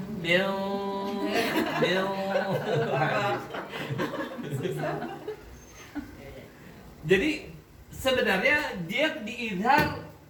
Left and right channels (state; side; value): identical; both; correlation 1.00